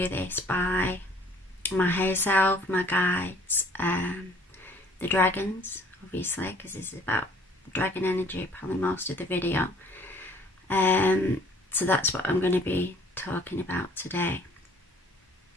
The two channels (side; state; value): both; normal; correlation 0.56